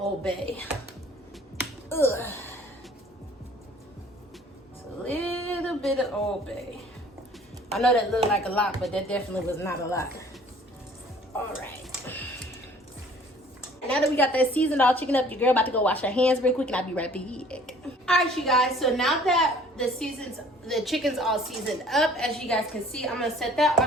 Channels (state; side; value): normal; both; correlation 0.53